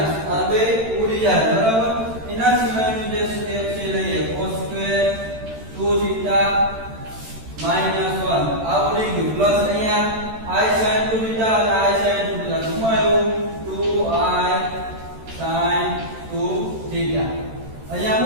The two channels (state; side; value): late; left; 13 ms